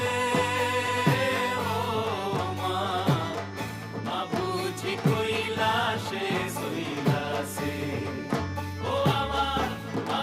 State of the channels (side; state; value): both; identical; correlation 1.00